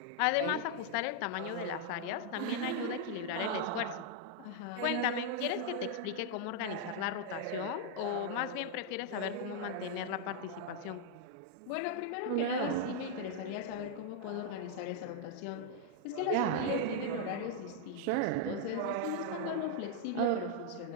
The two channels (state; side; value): different; both; correlation -0.01